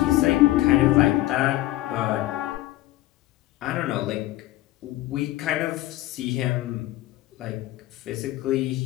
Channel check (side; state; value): right; quieter; 16.4 dB